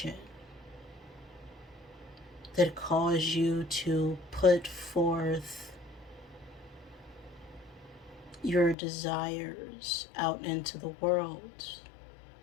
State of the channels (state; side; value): drops out; right; at 8.8 s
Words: that calls you to put forth your desires out into the world.